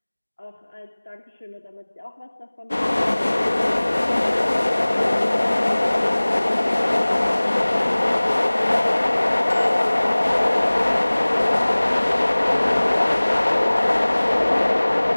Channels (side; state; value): both; inverted; correlation -1.00